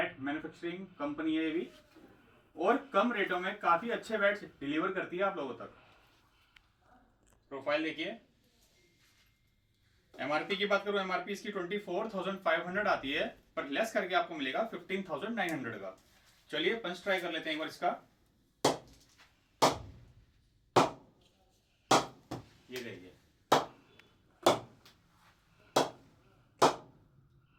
manufacturing company है ये भी। और कम रेटों में काफी अच्छे बैट्स डिलीवर करती है आप लोगों तक। प्रोफाइल देखिए। एमआरपी की बात करूं, एमआरपी इसकी 24,500 आती है, पर लेस करके आपको मिलेगा 15,900 का। चलिए पंच ट्राई कर लेते हैं एक बार इसका। ये देखिए,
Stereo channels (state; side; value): identical; both; correlation 1.00